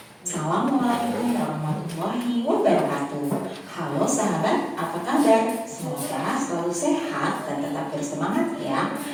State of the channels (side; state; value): both; identical; correlation 1.00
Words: Assalamualaikum warahmatullahi wabarakatuh. Halo sahabat, apa kabar? Semoga selalu sehat dan tetap bersemangat ya.